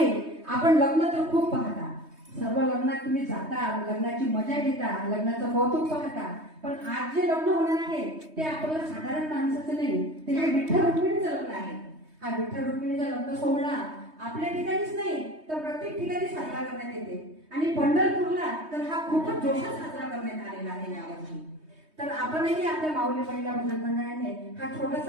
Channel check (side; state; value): left; late; 3.2 ms